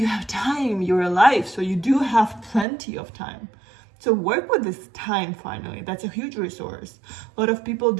have time, you're alive, so you do have plenty of time. So work with this time finally. That's a huge resource. A lot of people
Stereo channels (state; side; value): drops out; left; at 2.7 s